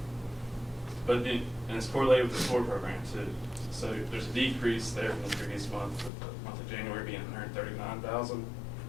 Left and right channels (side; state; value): right; drops out; at 6.1 s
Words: But and it's correlated with the SOAR program too. So there's a decrease there from the previous month, with the month of January being $139,000.